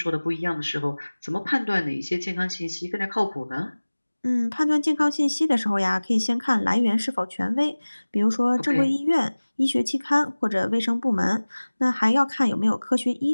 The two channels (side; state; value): both; inverted; correlation -1.00